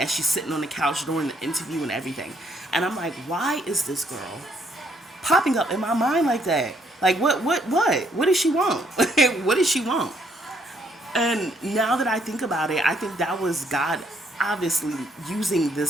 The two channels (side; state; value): both; normal; correlation 0.70